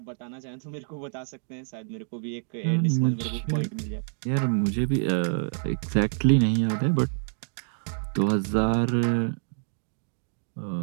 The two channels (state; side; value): silent; left; digital silence